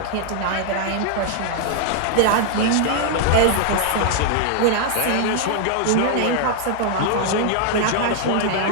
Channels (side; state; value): both; different; correlation 0.00